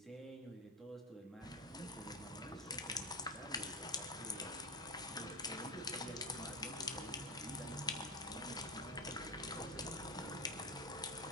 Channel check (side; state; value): both; normal; correlation 0.16